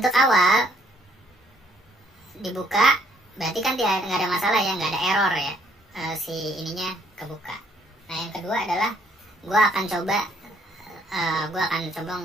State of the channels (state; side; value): normal; both; correlation 0.66